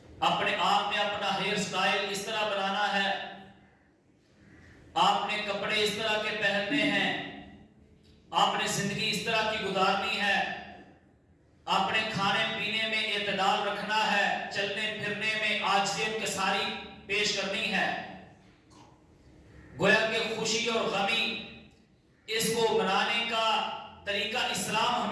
اپنے آپ میں اپنا ہیئر سٹائل اس طرح بنانا ہے، آپ نے کپڑے اس طرح کے پہننے ہیں، آپ نے زندگی اس طرح کی گزارنی ہے، آپ نے کھانے پینے میں اعتدال رکھنا ہے، چلنے پھرنے میں عاجزیت کے ساری پیش کرنی ہے۔ گویا کہ خوشی اور غمی اس کو منانے کا طریقہ اسلام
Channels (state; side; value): identical; both; correlation 1.00